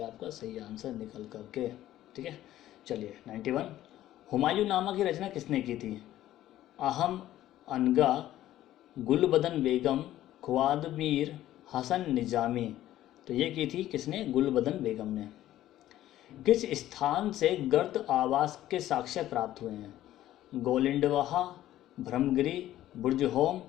आपका सही आंसर निकल करके, ठीक है। चलिए 91 हुमायूं नामा की रचना किसने की थी, अहम अनगा, गुलबदन बेगम, ख्वादमीर हसन निजामी, तो ये की थी किसने, गुलबदन बेगम ने। किस स्थान से गर्द आवास के साक्ष्य प्राप्त हुए हैं, गोलिंडवाहा, ब्रह्मगिरी, बुर्जहोम,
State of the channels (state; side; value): quieter; right; 13.6 dB